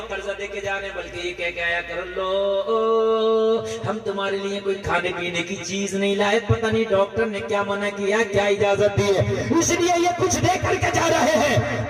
قرضہ دے کے جا رہے ہیں، بلکہ یہ کہہ کے آیا کر لو ہم تمہارے لیے کوئی کھانے پینے کی چیز نہیں لائے، پتہ نہیں ڈاکٹر نے کیا منع کیا، کیا اجازت دی ہے، اس لیے یہ کچھ دے کر کے جا رہے ہیں،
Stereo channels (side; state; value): both; identical; correlation 1.00